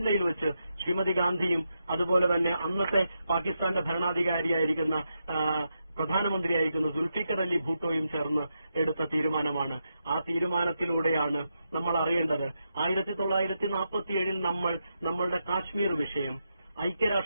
വെച്ച് ശ്രീമതി ഗാന്ധിയും അതുപോലെ തന്നെ അന്നത്തെ പാകിസ്ഥാന്റെ ഭരണാധികാരിയായിരിക്കുന്ന പ്രധാനമന്ത്രിയായിരിക്കുന്ന സുൽഫിക്കർ അലി ഭൂട്ടോയും ചേർന്ന് എടുത്ത തീരുമാനമാണ്. ആ തീരുമാനത്തിലൂടെയാണ് നമ്മൾ അറിയേണ്ടത് 1947 നമ്മളുടെ കാശ്മീർ വിഷയം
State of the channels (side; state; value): both; inverted; correlation -0.85